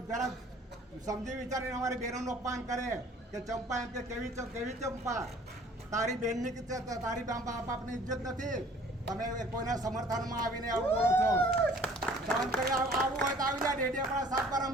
જરા સમજી વિચારીને અમારી બહેનોનું અપમાન કરે કે ચંપા એમ કે કેવી ચંપા, તારી બહેનની તારી બાપની ઇજ્જત નથી. તમે કોઈના સમર્થનમાં આવીને આવું બોલો છો. સહન કરી આવું હોય તો આવી જાય. ડેડિયાપાડા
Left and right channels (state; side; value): normal; both; correlation 0.53